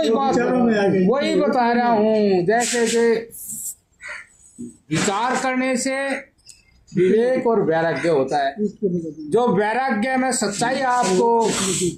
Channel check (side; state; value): both; identical; correlation 1.00